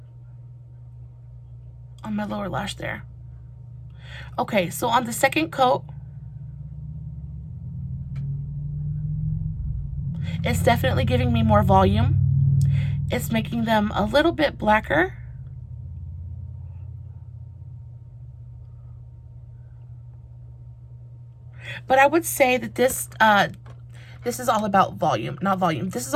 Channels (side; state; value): both; identical; correlation 1.00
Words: on my lower lash there. Okay, so on the second coat, it's definitely giving me more volume. It's making them a little bit blacker. But I would say that this is all about volume, not volume. This is